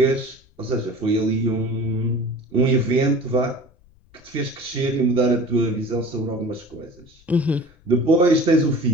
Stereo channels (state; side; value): noise; left; rumble, 29 dB below the sound